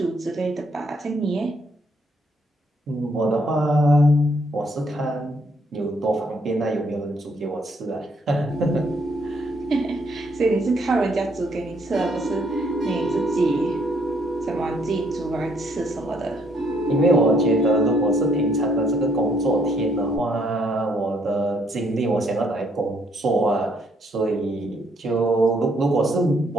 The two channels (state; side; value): normal; both; correlation 0.69